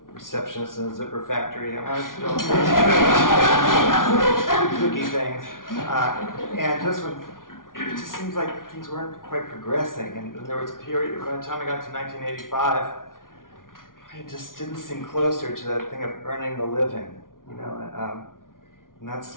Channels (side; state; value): right; late; 0.89 ms